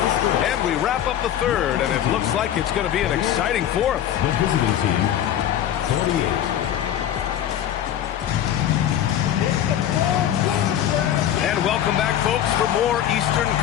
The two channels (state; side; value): quieter; right; 10.8 dB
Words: And we wrap up the third, and it looks like it's going to be an exciting fourth. The visiting team, 48. And welcome back, folks, for more Eastern